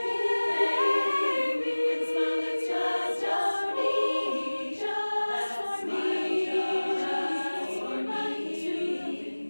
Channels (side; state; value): both; inverted; correlation -1.00